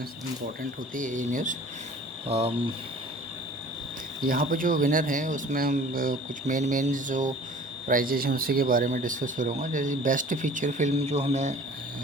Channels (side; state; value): both; normal; correlation 0.46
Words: होती है ये न्यूज़। यहाँ पर जो विनर हैं उसमें हम कुछ मेन जो प्राइजेज हैं उसी के बारे में डिस्कस करूँगा। जैसे बेस्ट फीचर फिल्म जो हमें